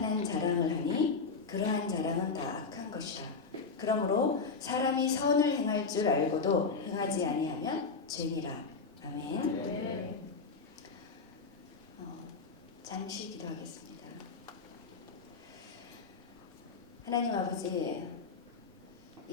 자랑을 하니 그러한 자랑은 다 악한 것이라. 그러므로 사람이 선을 행할 줄 알고도 행하지 아니하면 죄니라. 아멘. 네. 잠시 기도하겠습니다. 하나님 아버지,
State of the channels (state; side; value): quieter; right; 4.6 dB